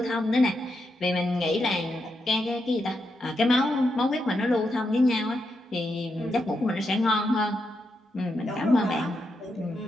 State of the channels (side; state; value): both; normal; correlation 0.83